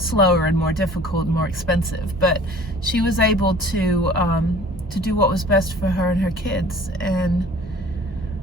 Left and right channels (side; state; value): both; normal; correlation 0.48